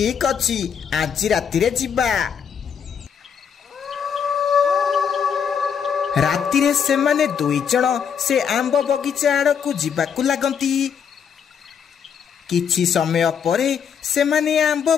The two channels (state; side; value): quieter; right; 7.3 dB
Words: अछि, आज राति रे जिबा। राति रे सेमाने दुई जण से आंब बगीचा आड़कू जिबाकू लागंती। किछि समय परे सेमाने आंब